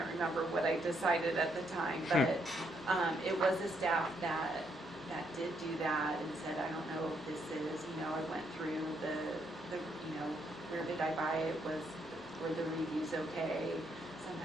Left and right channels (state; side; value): noise; left; hum, 24 dB below the sound